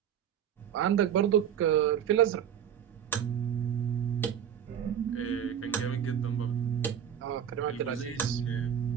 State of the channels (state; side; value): quieter; left; 9.1 dB